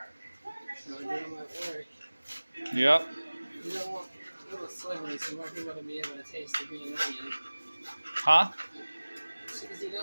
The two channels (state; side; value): inverted; both; correlation -1.00